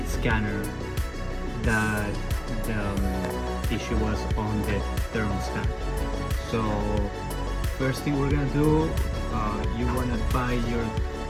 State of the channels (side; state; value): both; identical; correlation 1.00